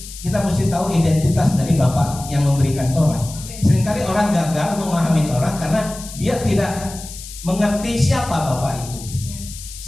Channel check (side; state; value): left; noise; hiss, 13 dB below the sound